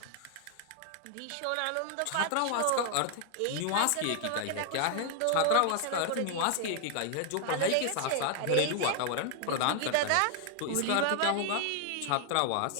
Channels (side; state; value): both; different; correlation 0.00